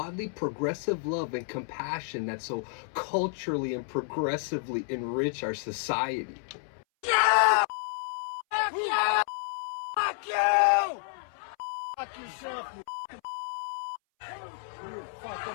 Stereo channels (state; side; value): silent; right; 58 dB below the other